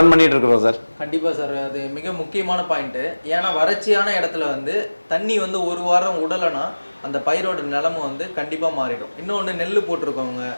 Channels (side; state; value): both; inverted; correlation -1.00